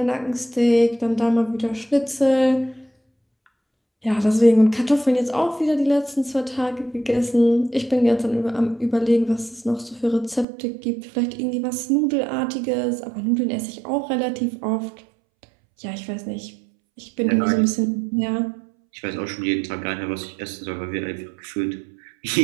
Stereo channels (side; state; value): left; drops out; at 10.5 s